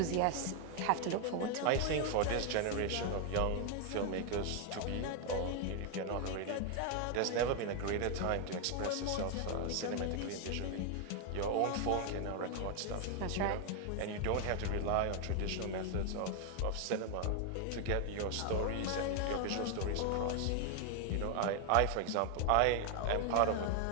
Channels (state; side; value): different; both; correlation 0.00